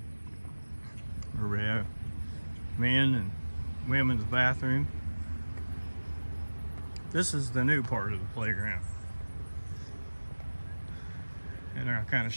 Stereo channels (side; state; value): both; inverted; correlation -1.00